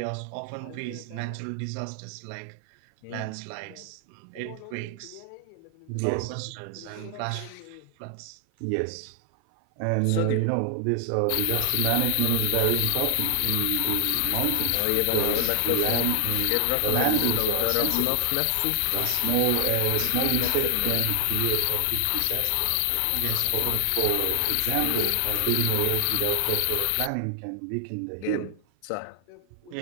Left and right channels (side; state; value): both; different; correlation 0.00